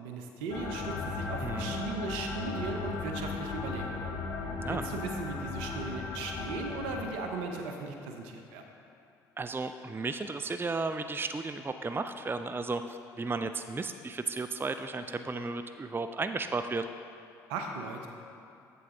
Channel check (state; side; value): normal; both; correlation 0.52